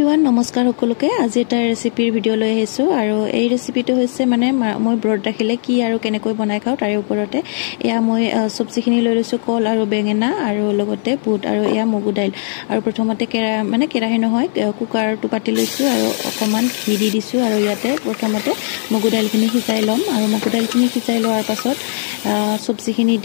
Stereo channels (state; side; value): silent; right; 58 dB below the other